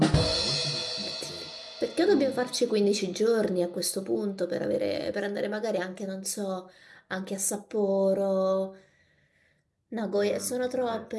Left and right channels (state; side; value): identical; both; correlation 1.00